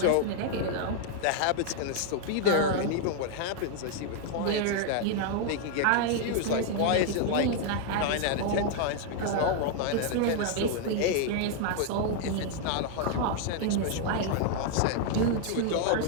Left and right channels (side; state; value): both; different; correlation 0.00